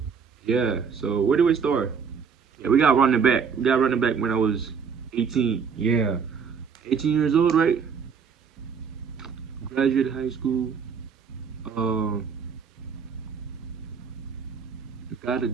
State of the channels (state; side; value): quieter; left; 6.3 dB